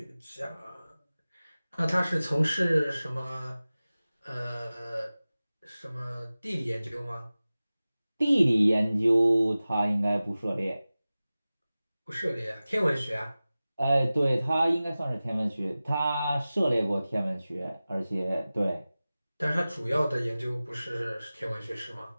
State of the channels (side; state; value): both; inverted; correlation -0.97